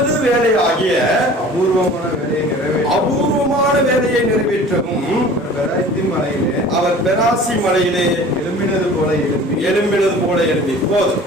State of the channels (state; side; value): normal; both; correlation 0.44